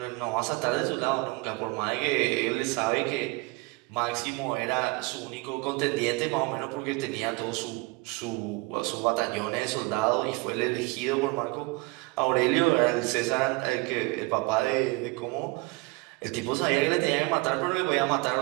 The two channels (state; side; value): quieter; left; 24.6 dB